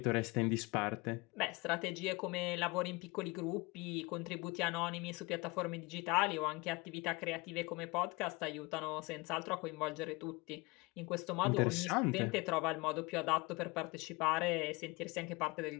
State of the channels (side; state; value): right; quieter; 25.2 dB